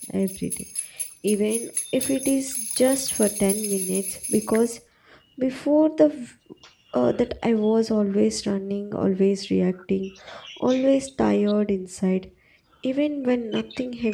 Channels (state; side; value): identical; both; correlation 1.00